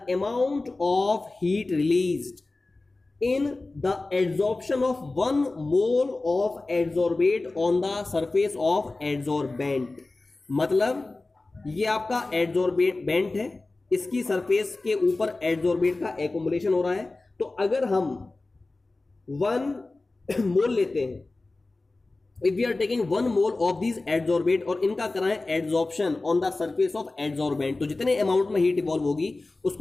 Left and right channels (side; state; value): right; quieter; 3.2 dB